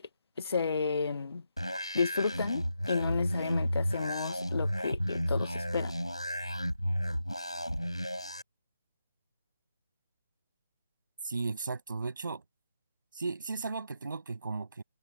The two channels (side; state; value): both; inverted; correlation -0.85